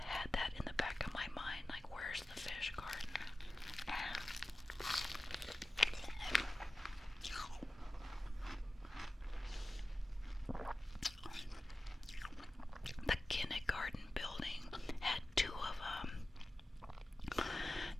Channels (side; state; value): both; normal; correlation 0.95